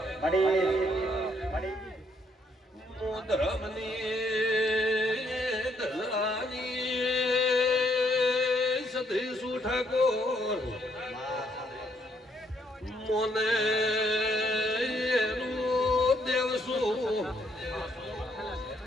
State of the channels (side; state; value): both; normal; correlation 0.71